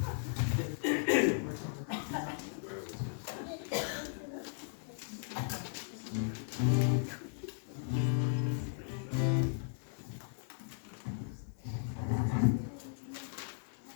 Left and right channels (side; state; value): right; silent; digital silence